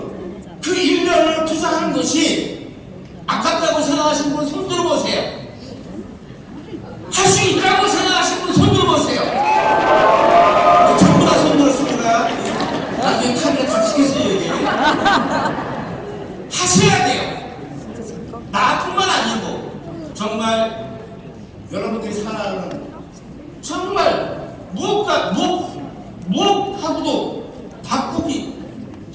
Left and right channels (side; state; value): both; identical; correlation 1.00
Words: 그 1년을 투자하는 것이 아깝다고 생각하시는 분 손 들어보세요. 할 수 있다고 생각하시는 분 손 들어보세요. 전부 다 손 들었습니다. 나중에 카메라 다치겠어요 여기. 하셔야 돼요. 나뿐만 아니고 정말 여러분들이 살아가는 정말 무엇하고도 바꾸기